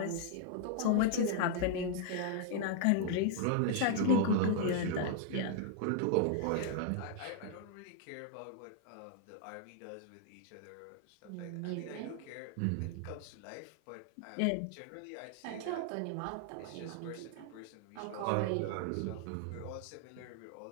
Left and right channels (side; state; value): both; different; correlation 0.00